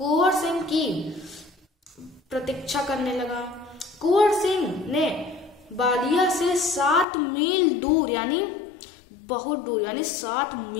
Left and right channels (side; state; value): right; drops out; at 7.1 s